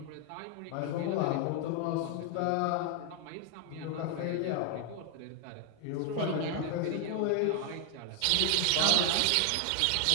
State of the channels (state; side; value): different; both; correlation 0.00